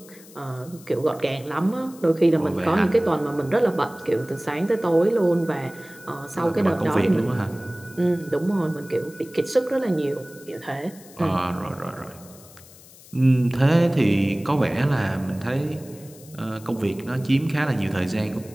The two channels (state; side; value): noise; left; hiss, 22 dB below the sound